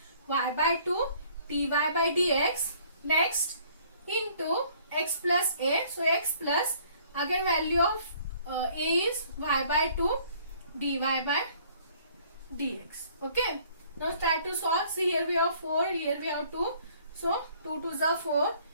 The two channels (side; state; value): both; inverted; correlation -0.58